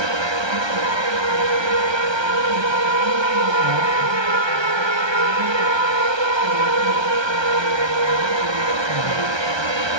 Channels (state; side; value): late; left; 1.3 ms